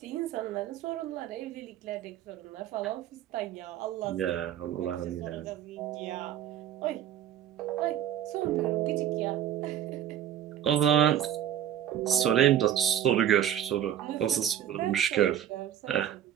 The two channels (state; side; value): quieter; left; 10.7 dB